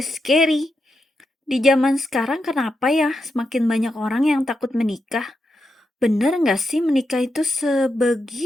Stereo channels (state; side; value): normal; both; correlation 0.85